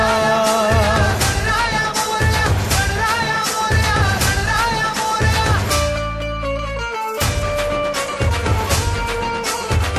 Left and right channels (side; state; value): both; identical; correlation 1.00